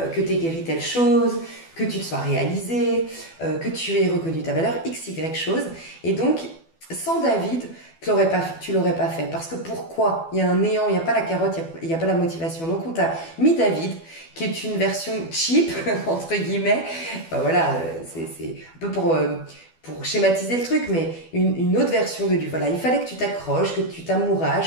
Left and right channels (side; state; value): right; late; 12 ms